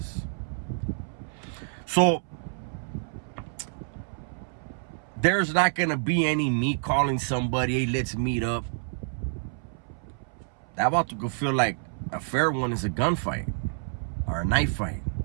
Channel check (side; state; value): left; silent; 59 dB below the other